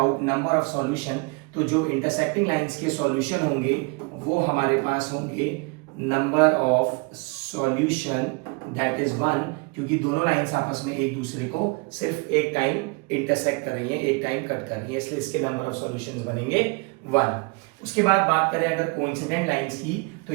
नंबर ऑफ सॉल्यूशन, तो जो इंटरसेक्टिंग लाइंस के सॉल्यूशन होंगे वो हमारे पास होंगे number of solution, that is 1, क्योंकि दोनों लाइंस आपस में एक दूसरे को सिर्फ एक टाइम इंटरसेक्ट कर रही हैं, एक टाइम कट कर रही हैं, इसलिए इसके नंबर ऑफ सॉल्यूशंस बनेंगे 1। उसके बाद बात करें अगर कोइंसिडेंट लाइंस की, तो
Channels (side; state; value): left; quieter; 29.9 dB